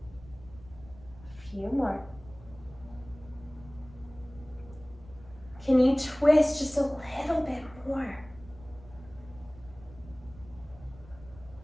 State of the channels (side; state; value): right; noise; rumble, 20 dB below the sound